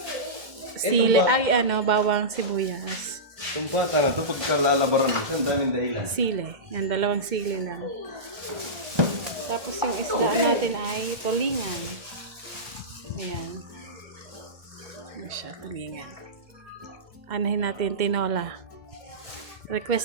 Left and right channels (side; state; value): left; late; 1.7 ms